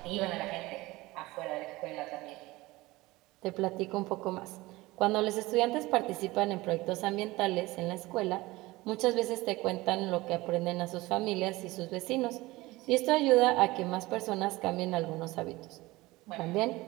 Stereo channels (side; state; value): left; quieter; 20.1 dB